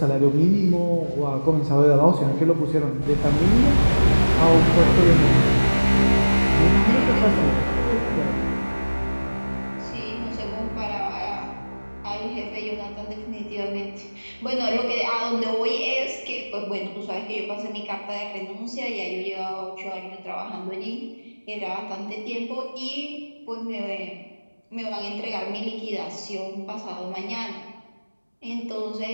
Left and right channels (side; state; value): both; inverted; correlation -1.00